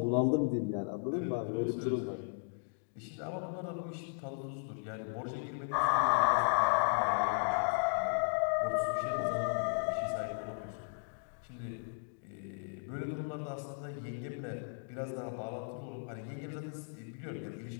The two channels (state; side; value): silent; right; digital silence